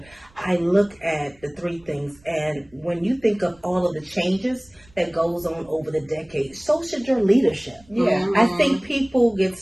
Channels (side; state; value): right; noise; rumble, 29 dB below the sound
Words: I look at the three things, and when you think of all of the changes that goes on over the decades, so should your leadership. Yeah, I think people get